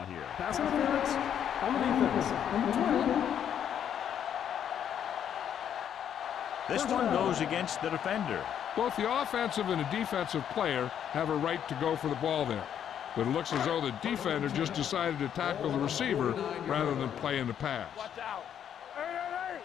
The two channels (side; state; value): right; quieter; 9.2 dB